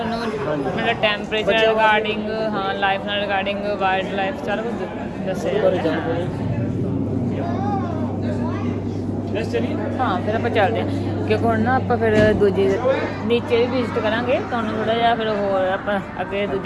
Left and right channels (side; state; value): both; identical; correlation 1.00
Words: ਮਤਲਬ ਟੈਂਪਰੇਚਰ ਰਿਗਾਰਡਿੰਗ, ਹਾਂ ਲਾਈਫ ਨਾਲ ਰਿਗਾਰਡਿੰਗ, ਵਾਈਲਡ ਲਾਈਫ ਸਾਰਾ ਕੁਝ ਦੱਸਿਆ ਬਾਰੇ ਜਾਂਦਾ ਹੈ। ਜਾਣਕਾਰੀ। ਲੈਟਸ ਚਲੀਏ। ਹਾਂ ਫਿਰ ਆਪਾਂ ਚੱਲਦੇ ਹਾਂ ਕਿਉਂਕਿ ਹੁਣ ਨਾ ਆਪਾਂ ਫਿਰ ਦੂਜੀ ਨੀਚੇ ਵੀ ਵਿਜ਼ਿਟ ਕਰਾਂਗੇ, ਤੁਹਾਨੂੰ ਥੋੜਾ ਜਿਹਾ ਫਿਰ ਹੋਰ ਆਪਾਂ ਅੱਗੇ